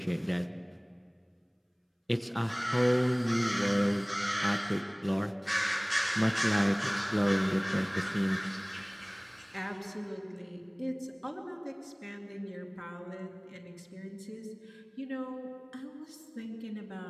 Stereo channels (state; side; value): identical; both; correlation 1.00